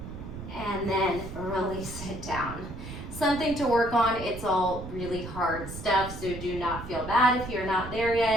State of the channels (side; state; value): right; noise; rumble, 10 dB below the sound